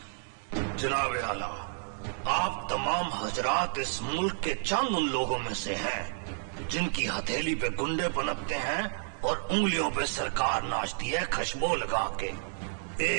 जनाब आला, आप तमाम हजरात इस मुल्क के चंद उन लोगों में से हैं जिनकी हथेली पे गुंडे पनपते हैं और उंगलियों पे सरकार नाचती है खुशबू लगा के।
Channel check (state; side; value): silent; left; digital silence